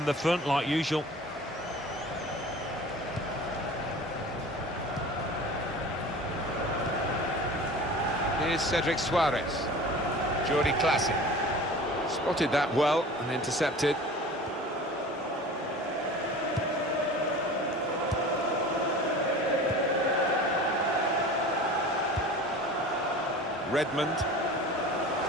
the front like usual. Here's Cedric Suarez. Jordi Classy. Spotted that well and intercepted. Redmond.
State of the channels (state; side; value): normal; both; correlation 0.39